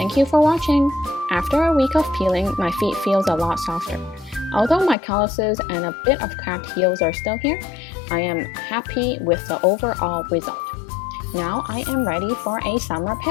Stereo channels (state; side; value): drops out; right; at 5.0 s